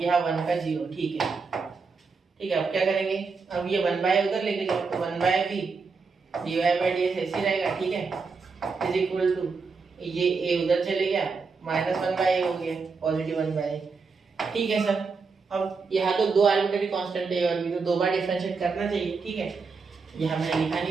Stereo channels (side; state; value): left; quieter; 4.8 dB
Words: यहाँ 1 का 0, ठीक है, ठीक है। अब क्या करेंगे, अब ये 1 बाय उधर लेके जाओ, तो 1 by b dy by dx ऐसे रहेगा, ठीक है, इज इक्वल टू ये a उधर चले गया, माइनस 1 बाय a हो गया, पॉजिटिव 1 बाय a, ठीक है सर। अब यहाँ तो दो आर्बिट्रेरी कांस्टेंट है और भी, तो दो बार डिफरेंशिएट करना चाहिए, ठीक है। यहाँ मैंने लिखा